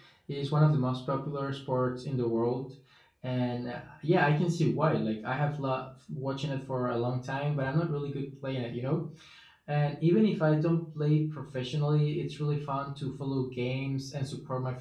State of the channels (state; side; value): identical; both; correlation 1.00